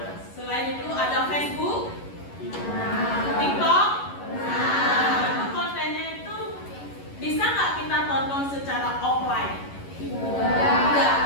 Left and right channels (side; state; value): right; late; 11 ms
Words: selain itu ada Facebook, TikTok. Itu kontennya itu bisa nggak kita tonton secara offline? Tidak.